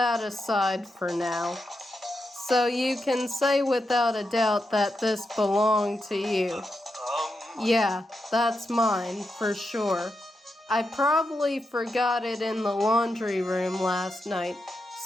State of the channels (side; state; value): both; normal; correlation 0.86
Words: aside for now. So you can say without a doubt that this belonged to you. Yeah, that's mine, for sure. I probably forgot it in the laundry room last night.